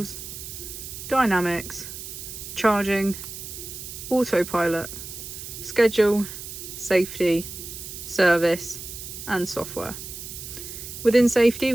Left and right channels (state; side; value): noise; right; hiss, 10 dB below the sound